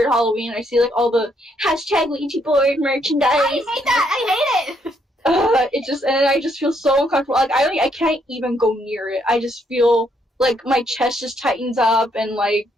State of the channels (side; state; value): both; normal; correlation 0.73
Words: Halloween. I see like all the hashtag Ouija board merchandise. I hate that. I hate it. And I just feel so uncomfortable. Like I can't even go near it. I just feel like my chest just tightens up and like